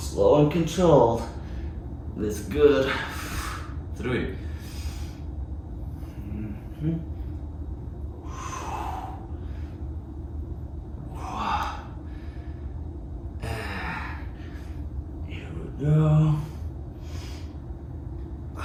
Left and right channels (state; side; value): identical; both; correlation 1.00